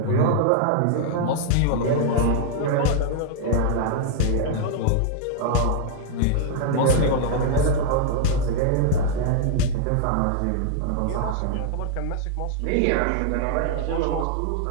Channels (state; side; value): different; both; correlation -0.01